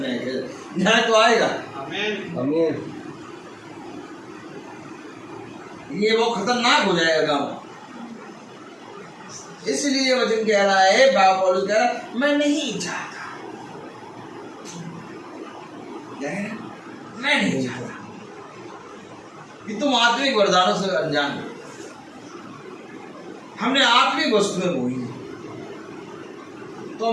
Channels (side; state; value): both; identical; correlation 1.00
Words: न्याय किया जाएगा। न्याय तो आएगा। आमीन। ये वो खतरनाक हो जाएगा गाँव। इसलिए वचन कह रहा है, बाबा पौलुस कह रहा है, मैं नहीं चाहता, मैं नहीं चाहता कि तुम आत्मिक वरदानों से अनजान हो। हमने आत्मिक वस्तुएं बोई तो